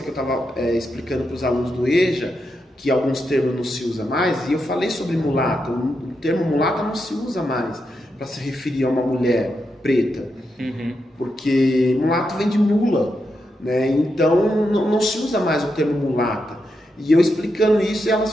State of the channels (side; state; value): both; normal; correlation 0.85